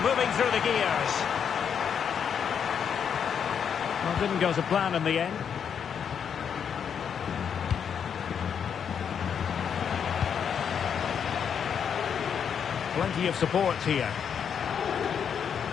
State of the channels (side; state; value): right; quieter; 7.6 dB